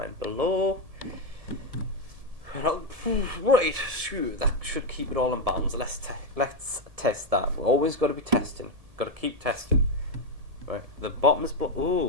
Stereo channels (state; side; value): late; left; 1.7 ms